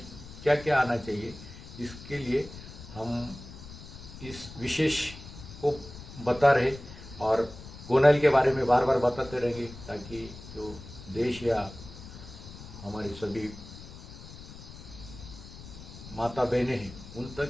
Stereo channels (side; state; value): left; noise; rumble, 15 dB below the sound